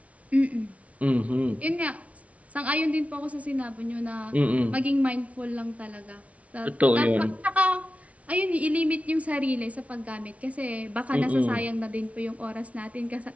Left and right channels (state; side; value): late; left; 0.066 ms